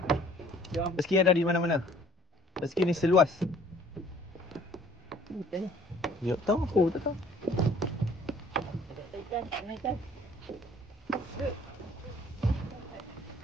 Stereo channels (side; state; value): both; normal; correlation 0.56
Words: Rezeki ada di mana-mana. Rezeki ni seluas. Ikan ni. Ya, tahu aku, tak tahu. Ikan.